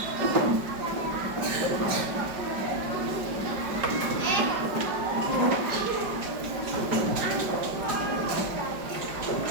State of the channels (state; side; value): late; left; 5.2 ms